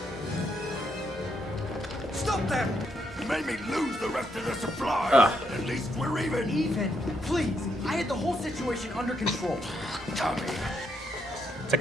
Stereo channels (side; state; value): both; normal; correlation 0.77